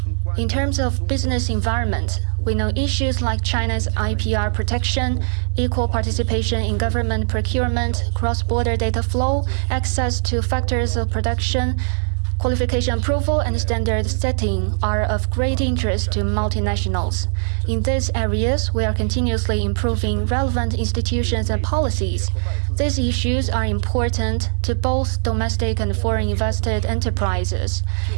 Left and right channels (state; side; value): silent; left; digital silence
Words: In terms of business environment, we know issues like China's IPR protection, equal participation in government procurement, cross-border data flow, access to factors of production, Qualification approval and standard setting are of great interest to multinationals. In these areas, we are continuously improving relevant institutions and policies. These issues are important to both domestic and foreign invested enterprises,